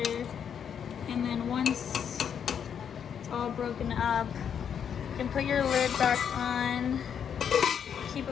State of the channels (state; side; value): quieter; right; 8.0 dB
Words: And then once it's all broken up, you can put your lid back on. Keep